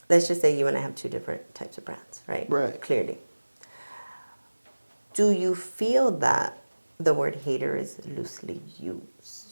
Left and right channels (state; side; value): inverted; both; correlation -1.00